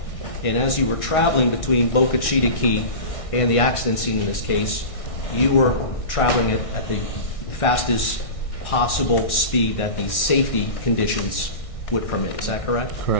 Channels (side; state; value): right; late; 1.6 ms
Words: And as you were traveling between Boca Chita Key and the accident scene in this case, you were traveling at the fastest possible speed that the safety conditions would permit. Is that correct?